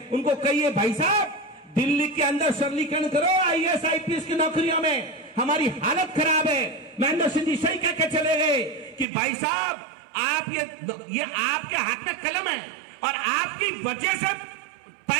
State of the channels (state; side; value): drops out; left; at 9.1 s